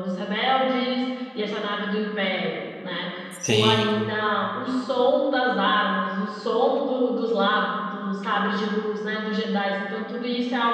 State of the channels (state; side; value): identical; both; correlation 1.00